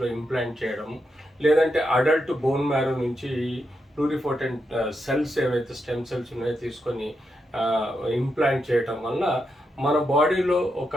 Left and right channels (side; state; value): both; normal; correlation 0.84